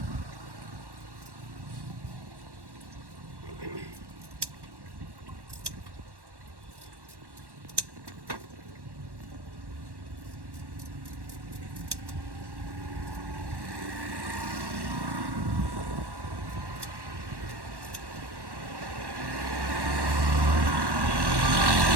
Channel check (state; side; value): late; left; 1.1 ms